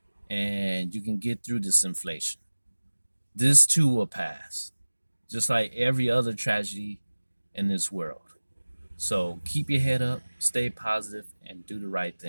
and you can get through this inflation. This too will pass, just like every other tragedy in this world. So keep your head up, stay positive, and do the right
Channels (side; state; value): both; inverted; correlation -1.00